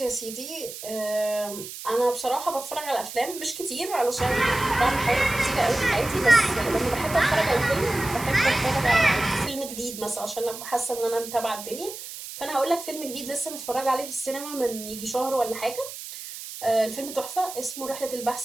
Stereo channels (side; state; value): right; noise; hiss, 11 dB below the sound